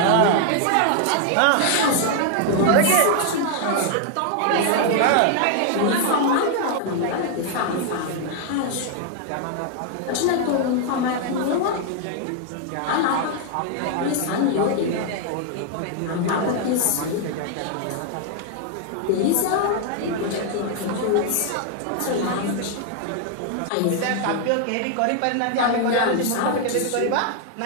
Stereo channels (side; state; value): both; different; correlation 0.00